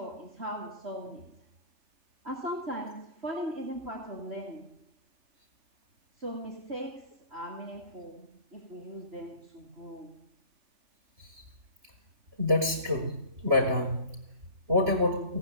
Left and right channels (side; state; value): left; late; 2.9 ms